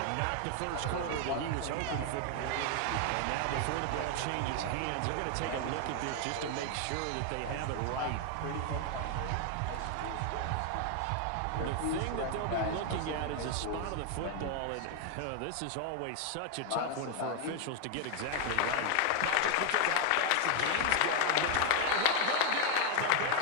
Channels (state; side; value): different; both; correlation 0.00